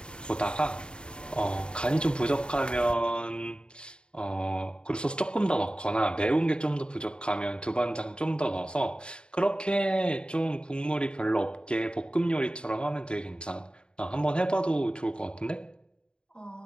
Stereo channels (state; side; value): late; right; 0.051 ms